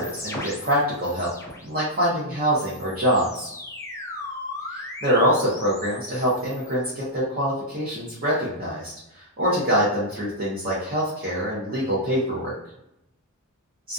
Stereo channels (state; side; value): normal; both; correlation -0.07